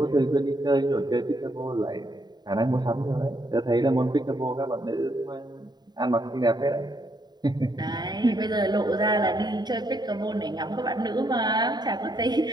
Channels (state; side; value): late; left; 0.20 ms